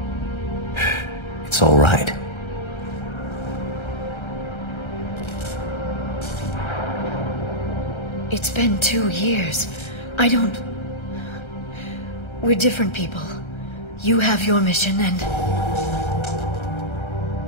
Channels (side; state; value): right; late; 1.3 ms